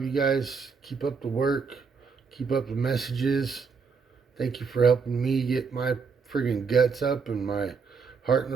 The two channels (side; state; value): left; quieter; 5.3 dB